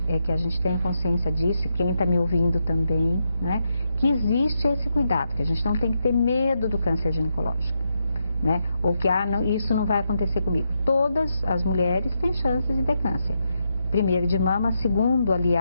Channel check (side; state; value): both; inverted; correlation -0.82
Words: é que a gente tenha consciência disso, quem está me ouvindo também, né? Que existe esse cuidado, que a gente não tem que ter medo do câncer ginecológico, né? Ou que isso não vai acontecer comigo. Todas as mulheres têm chances de ter câncer. Primeiro de mama, segundo,